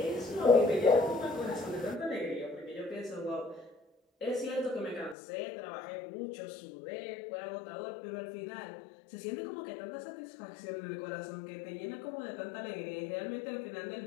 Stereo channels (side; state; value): right; drops out; at 5.2 s